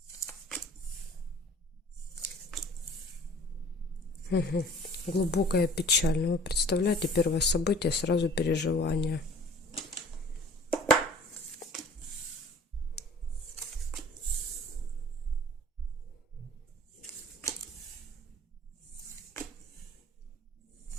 Угу. Глубокая печаль. Ну, вы представляете, первое событие, сразу переживание.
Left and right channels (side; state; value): both; normal; correlation 0.48